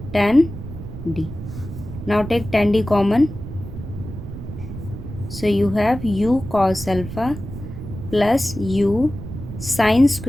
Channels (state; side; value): noise; right; rumble, 10 dB below the sound